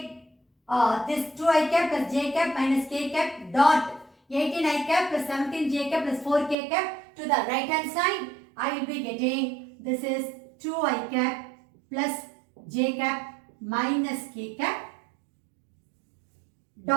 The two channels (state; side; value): drops out; left; at 6.6 s